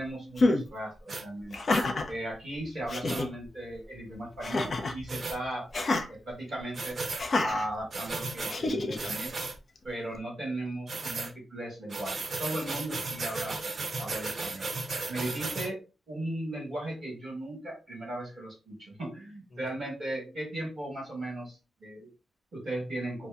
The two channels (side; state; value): both; normal; correlation 0.87